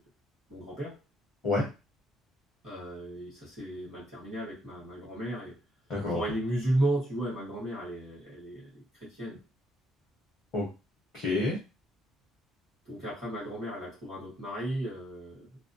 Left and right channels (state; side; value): normal; both; correlation 0.72